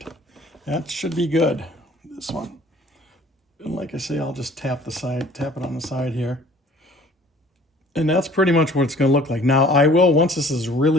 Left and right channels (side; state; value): both; normal; correlation 0.52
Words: That should be good, this one. And like I say, I'll just tap it on the side here. And that's pretty much what it's going to look like. Now, once this is